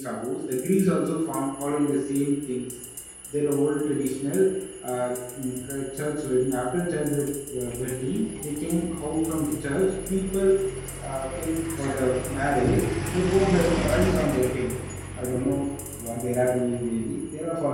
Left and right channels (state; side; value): identical; both; correlation 1.00